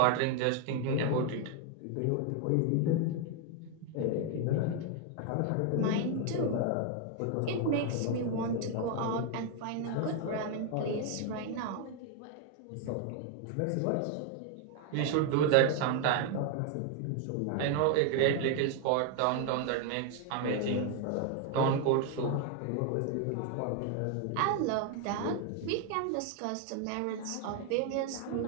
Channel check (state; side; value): different; both; correlation 0.01